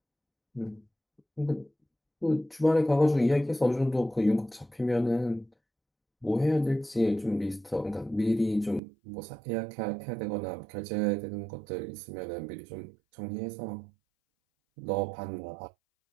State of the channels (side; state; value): left; drops out; at 8.8 s